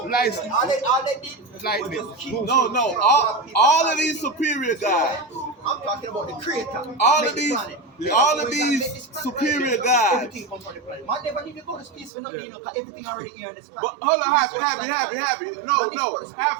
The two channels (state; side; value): drops out; left; at 12.1 s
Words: Lightning. All they did Lightning. was just keep. No. All of these superior gods. I'm talking about the creator. All Make of the these- planet. all of When these God made this planet, superior gods. Everything comes from the planet. Man never need to go to space for nothing. You know, 'cause everything already here on this planet. But hold on, happy. No,